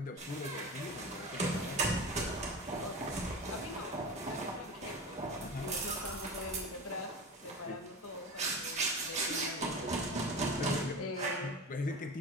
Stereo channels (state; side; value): normal; both; correlation 0.29